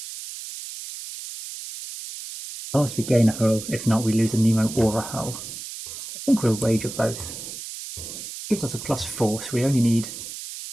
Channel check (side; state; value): right; noise; hiss, 10 dB below the sound